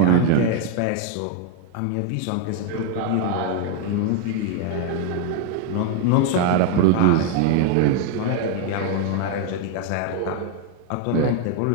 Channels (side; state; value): both; different; correlation 0.00